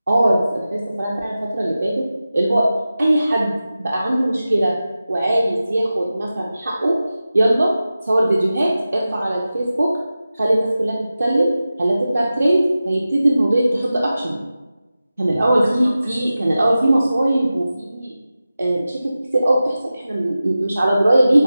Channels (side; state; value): both; inverted; correlation -0.94